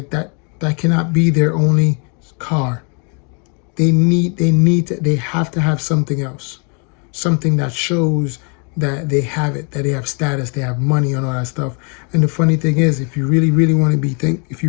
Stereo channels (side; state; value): right; quieter; 37.0 dB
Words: that cannot be their only car. They have to have something else. Something that shows that they have it, that they have status, they have money and all that stuff. And the funny thing is, if you really want to if